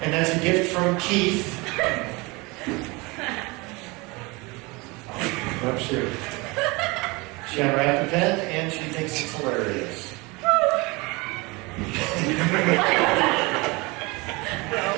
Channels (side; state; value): left; quieter; 25.4 dB